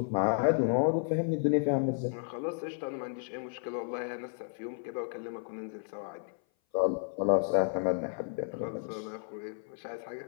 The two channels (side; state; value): right; silent; 56 dB below the other